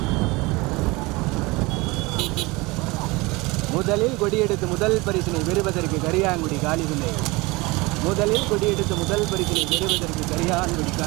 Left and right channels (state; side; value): quieter; left; 23.7 dB